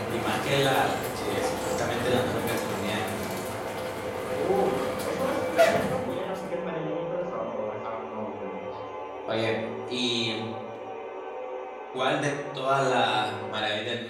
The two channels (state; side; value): identical; both; correlation 1.00